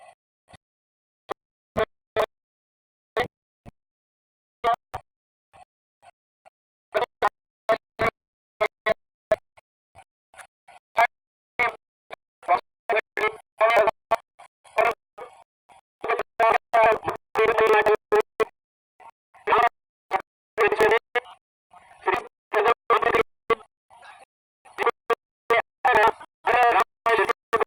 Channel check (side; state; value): both; identical; correlation 1.00